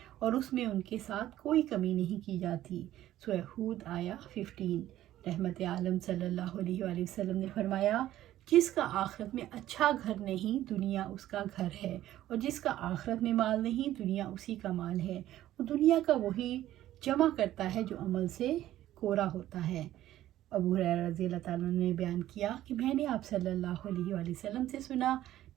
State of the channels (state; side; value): quieter; left; 13.6 dB